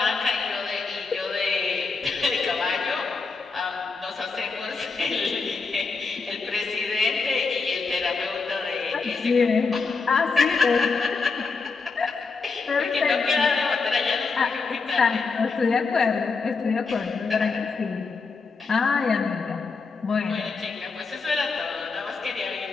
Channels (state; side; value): quieter; right; 4.5 dB